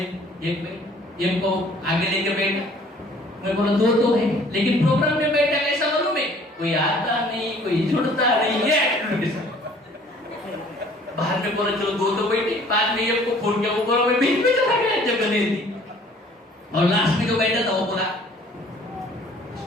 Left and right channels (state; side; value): normal; both; correlation 0.55